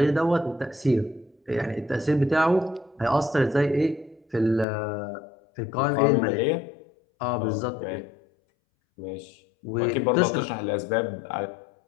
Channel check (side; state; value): right; drops out; at 4.7 s